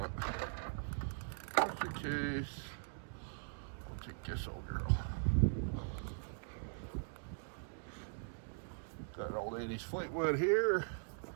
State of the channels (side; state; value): left; silent; digital silence